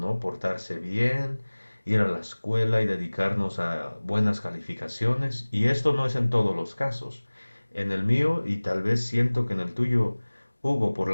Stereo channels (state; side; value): inverted; both; correlation -1.00